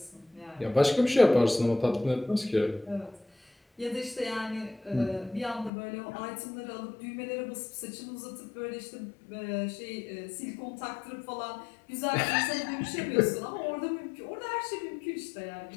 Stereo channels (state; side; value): drops out; right; at 5.7 s